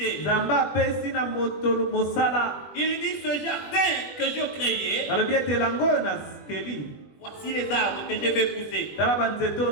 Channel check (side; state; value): right; late; 21 ms